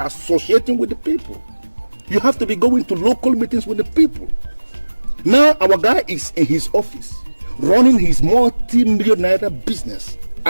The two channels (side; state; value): both; inverted; correlation -1.00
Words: with the people. You have to be going to local meetings with the people. Now our guy is in his office, running his multi-million naira business,